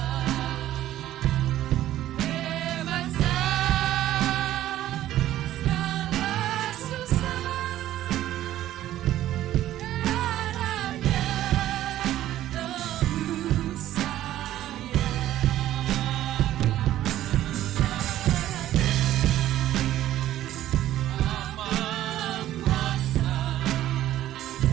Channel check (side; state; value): left; quieter; 13.3 dB